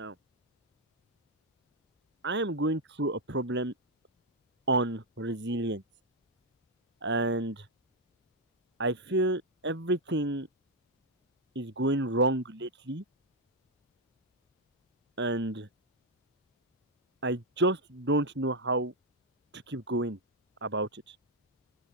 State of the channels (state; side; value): normal; both; correlation 0.00